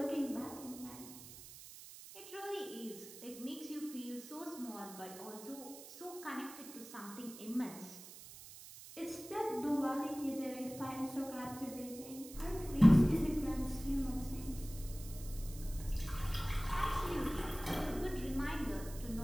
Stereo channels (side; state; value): right; noise; hiss, 15 dB below the sound